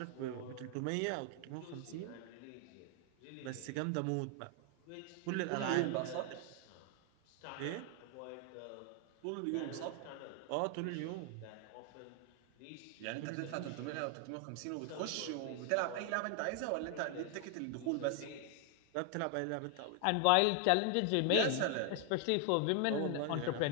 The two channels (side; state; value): both; different; correlation 0.00